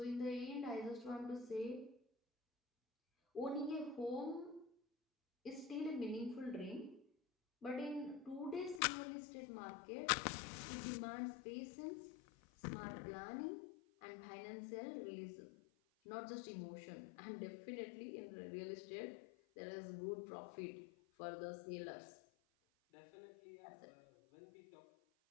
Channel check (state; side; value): drops out; right; at 8.8 s